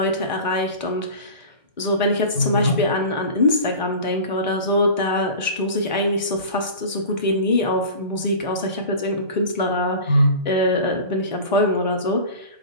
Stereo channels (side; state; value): both; inverted; correlation -0.35